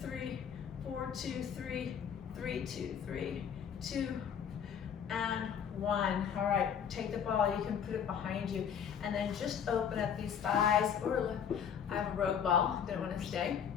3, 4, 2, 3, 3, 2, 3, 2, and 1. All right, take the ball, you can put it behind you, and then just open up these thighs. I have a rogue ball, didn't want to stay.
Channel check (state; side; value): quieter; right; 7.9 dB